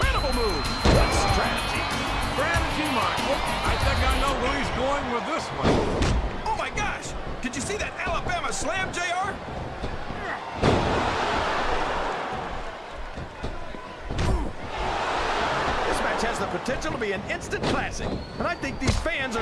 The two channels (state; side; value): identical; both; correlation 1.00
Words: move. What strategy? Strategy, Michael. I think I know where he's going with this one. Oh my gosh, did you see that Alabama slam, JR? This match has the potential to be an instant classic, and I think these fans